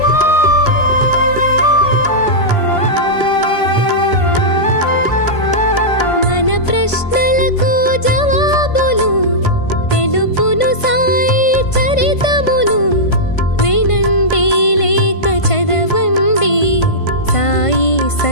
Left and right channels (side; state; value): right; late; 1.5 ms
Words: మన ప్రశ్నలకు జవాబులు తెలుపును సాయి చరితములు. వినండి లేక చదవండి, సాయి